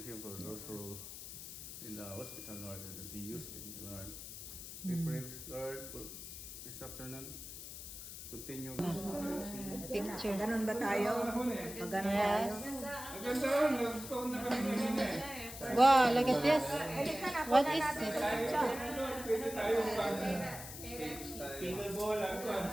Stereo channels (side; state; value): left; noise; hiss, 10 dB below the sound